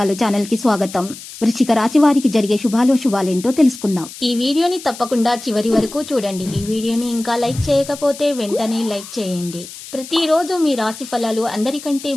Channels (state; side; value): noise; left; hiss, 14 dB below the sound